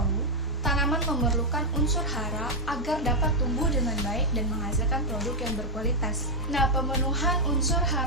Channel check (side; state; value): both; normal; correlation -0.03